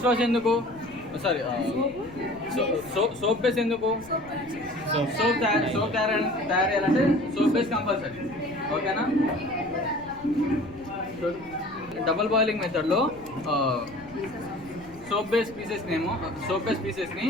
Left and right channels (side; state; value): left; noise; rumble, 22 dB below the sound